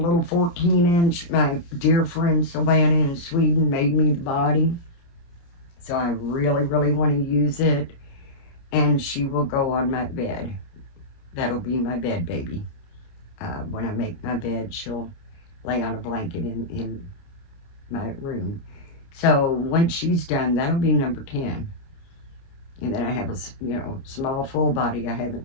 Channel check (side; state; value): right; late; 29 ms